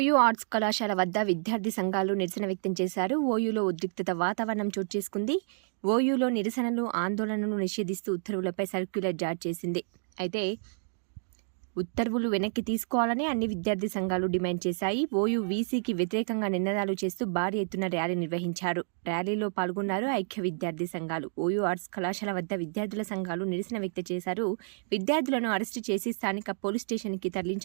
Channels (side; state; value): left; silent; digital silence